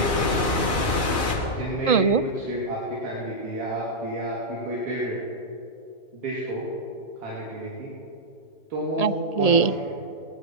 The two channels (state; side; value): late; right; 2.4 ms